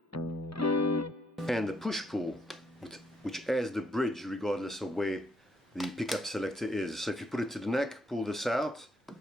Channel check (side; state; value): both; normal; correlation 0.73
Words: And the push-pull, which adds the bridge regardless of where the pickup selector is. So if you put it to the neck, pull this out,